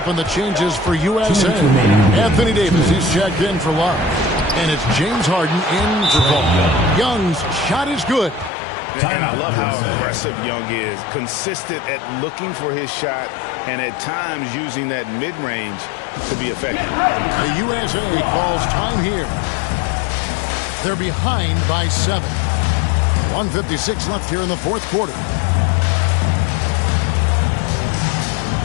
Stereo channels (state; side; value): drops out; right; at 8.5 s